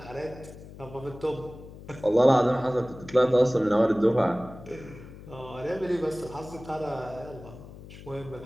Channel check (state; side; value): noise; left; hum, 16 dB below the sound